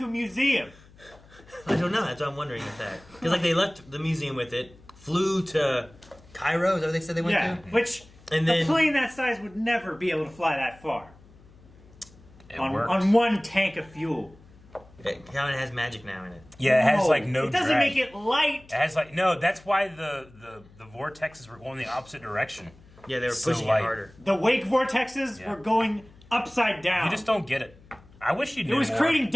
a museum? I don't know. That's what I'm wondering if that. Because, like, they left the museum with it, flew to Cairo, is that what they said they went Yeah, to? which And a then- plane that size would never be able to fly that far. It On worked. one tank of fuel. It kind of has magic now in it. Yeah, it has like no It doesn't drag. make it light. It has like no. That's why the vortexes were going the opposite direction. Yeah, they were So pushing light. it harder. The wake vortexes Yeah. were going upside down. You just don't get it. I wish you knew It was more. creating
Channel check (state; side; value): noise; left; hum, 25 dB below the sound